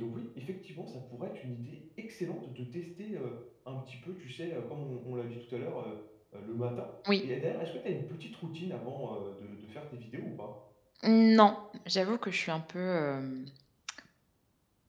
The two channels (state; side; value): identical; both; correlation 1.00